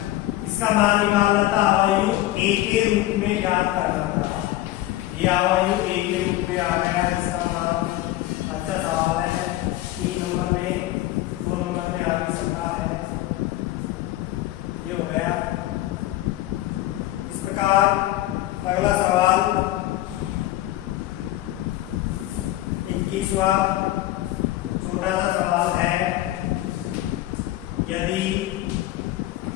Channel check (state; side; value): quieter; right; 15.6 dB